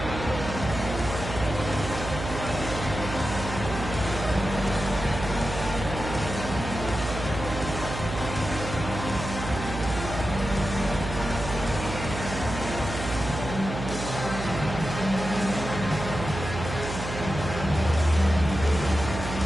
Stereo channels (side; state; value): right; noise; hum, 7 dB below the sound